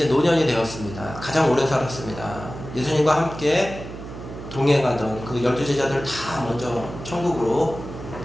노년이 되었습니다. 가장 오래 살았습니다. 예수님과 함께 동행하던 그 12제자들을 다 먼저 천국으로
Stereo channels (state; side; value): noise; right; hum, 11 dB below the sound